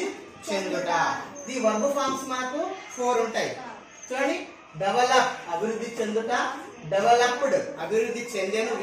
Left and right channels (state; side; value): identical; both; correlation 1.00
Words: చెందుట. ది వర్బ్ ఫార్మ్స్ మనకు 4 ఉంటాయి. చూడండి, డెవలప్ అభివృద్ధి చెందుట, డెవలప్డ్ అభివృద్ధి చెందెను